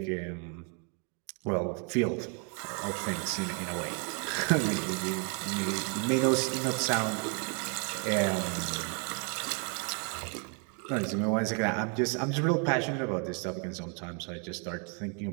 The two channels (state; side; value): quieter; left; 37.7 dB